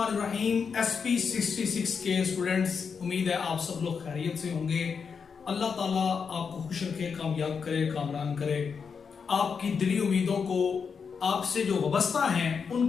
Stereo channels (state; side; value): quieter; right; 6.0 dB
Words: SP66 के students, उम्मीद है आप सब लोग खैरियत से होंगे। अल्लाह ताला आपको खुश रखे, कामयाब करे, कामरान करे, आपकी दिली उम्मीदों को आपसे जो वाबस्ता हैं